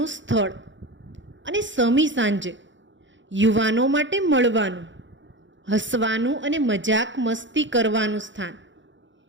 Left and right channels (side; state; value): left; late; 0.54 ms